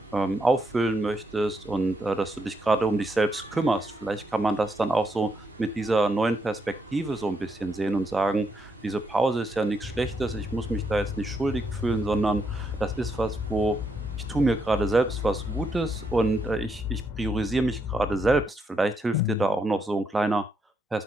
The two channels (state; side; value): normal; both; correlation 0.78